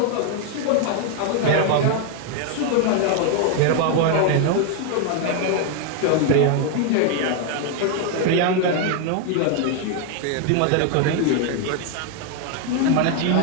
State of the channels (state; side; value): different; both; correlation 0.00